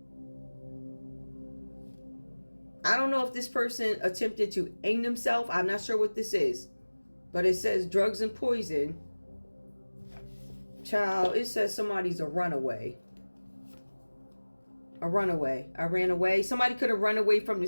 I don't know if this person attempted to hang themselves. I'm not sure what this is. But it says drugs and poison. Child, it says somebody's a runaway. A runaway. I ran away. Somebody could have run away from the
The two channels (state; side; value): inverted; both; correlation -1.00